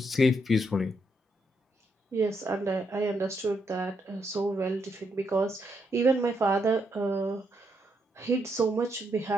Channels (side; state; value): both; normal; correlation 0.78